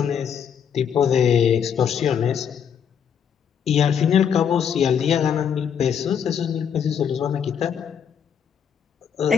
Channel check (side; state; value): right; quieter; 7.9 dB